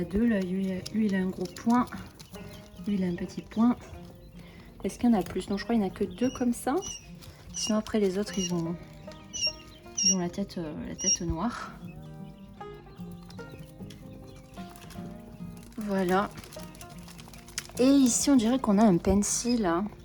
a deux là. Lui il a un gros point. Lui il a un petit point. Est-ce qu'il y en a plus? Non, je crois qu'il n'y en a que 2 comme ça. Sinon après les autres ils ont la tête noire. Voilà. Et ici on dirait qu'on a un pencil là.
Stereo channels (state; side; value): identical; both; correlation 1.00